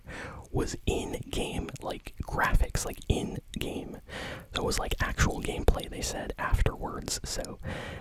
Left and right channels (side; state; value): both; identical; correlation 1.00